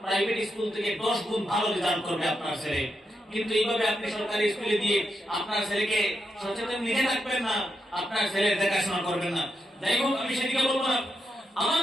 প্রাইভেট স্কুল থেকে 10 গুণ ভালো রেজাল্ট করবে আপনার ছেলে। কিন্তু এইভাবে আপনি সরকারি স্কুলে দিয়ে আপনার ছেলেকে সচেতন নিজে রাখবেন না, আপনার ছেলের দেখাশোনা করবেন না। যাই হোক, আমি সেদিকে বলবো না। আমার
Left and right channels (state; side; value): normal; both; correlation 0.84